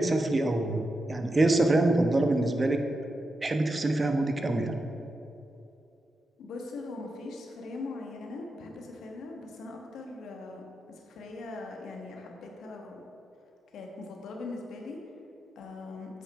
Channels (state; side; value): normal; both; correlation 0.88